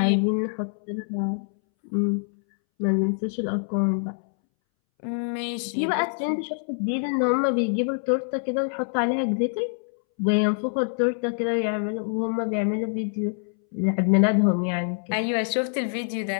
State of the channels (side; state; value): right; silent; 61 dB below the other